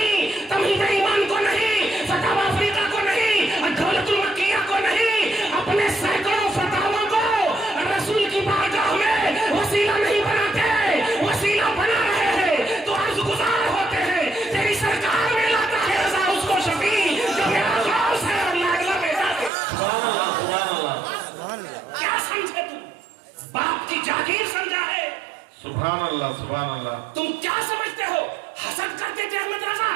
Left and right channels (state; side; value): drops out; left; at 19.5 s